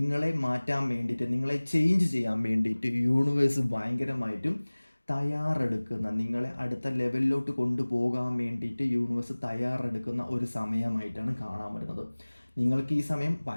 മാറ്റാൻ വേണ്ടിയിട്ട്, നിങ്ങളെ ചേഞ്ച് ചെയ്യാൻ വേണ്ടിയിട്ട് യൂണിവേഴ്സ് ഭയങ്കരമായിട്ടും തയ്യാറെടുക്കുന്ന, നിങ്ങളെ അടുത്ത ലെവലിലോട്ട് കൊണ്ടുപോകാൻ വേണ്ടിയിട്ട് യൂണിവേഴ്സ് തയ്യാറെടുക്കുന്ന ഒരു സമയമായിട്ടാണ് കാണാൻ പറ്റുന്നത്. നിങ്ങൾക്ക് ഈ സമയം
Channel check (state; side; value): inverted; both; correlation -1.00